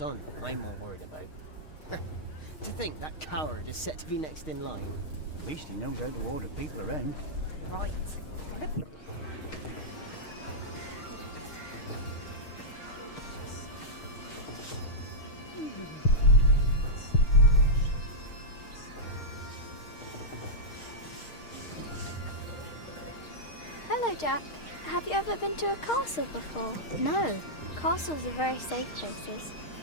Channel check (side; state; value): right; late; 6.5 ms